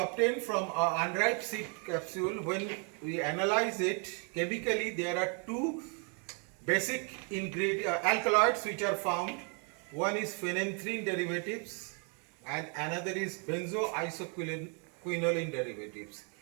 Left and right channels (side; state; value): left; quieter; 38.3 dB